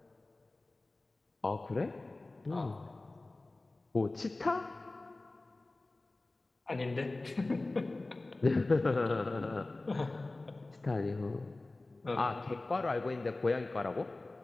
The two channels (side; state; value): right; quieter; 3.0 dB